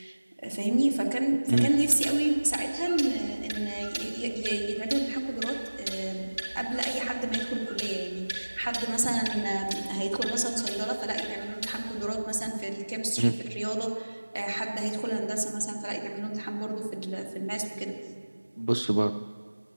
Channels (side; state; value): both; inverted; correlation -1.00